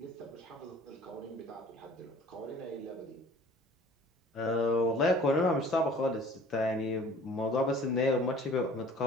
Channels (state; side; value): normal; both; correlation 0.49